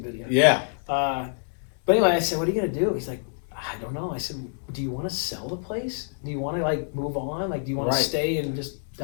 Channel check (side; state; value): right; silent; digital silence